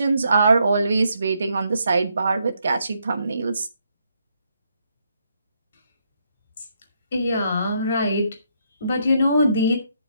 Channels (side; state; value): both; inverted; correlation -0.75